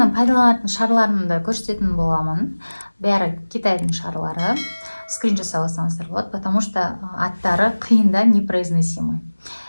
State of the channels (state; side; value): inverted; both; correlation -1.00